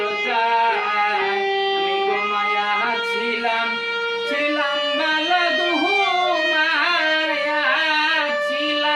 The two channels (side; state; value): both; identical; correlation 1.00